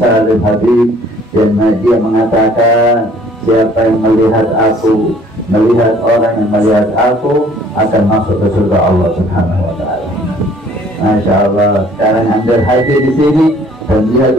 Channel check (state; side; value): normal; both; correlation 0.57